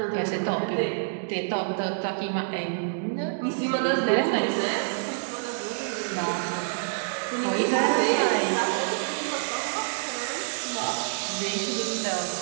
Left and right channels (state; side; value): silent; left; digital silence